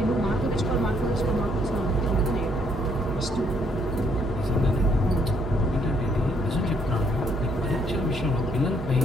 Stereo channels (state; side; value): normal; both; correlation 0.69